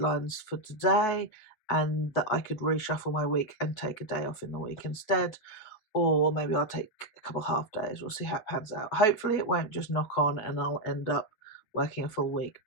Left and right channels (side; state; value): right; late; 9.2 ms